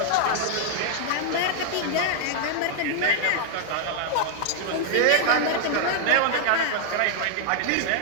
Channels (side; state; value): both; different; correlation -0.01